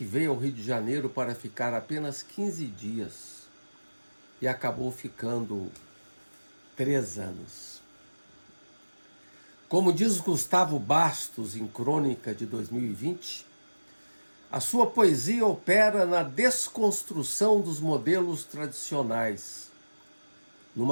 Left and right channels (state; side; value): inverted; both; correlation -1.00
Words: veio ao Rio de Janeiro para ficar apenas 15 dias e acabou ficando 3 anos. Como diz Gustavo Bastos em Crônica de 2020, a sua poesia opera na desconstrução dos modelos tradicionais,